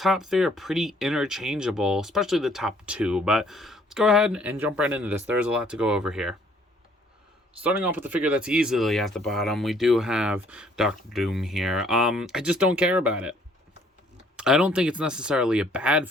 three are pretty interchangeable, especially the top two. But let's go ahead and jump right into this. There's a lot to go over here. Starting off with the figure that's easily at the bottom, we do have Doctor Doom here. I just don't care about it. I don't think it's necessarily a bad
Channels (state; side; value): normal; both; correlation 0.62